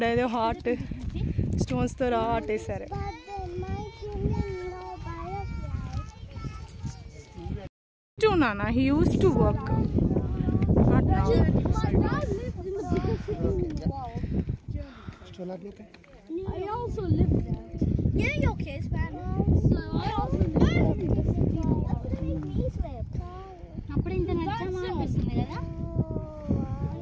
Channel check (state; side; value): identical; both; correlation 1.00